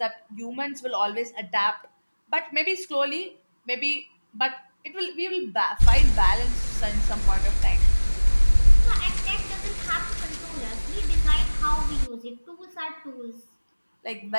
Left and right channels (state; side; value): inverted; both; correlation -1.00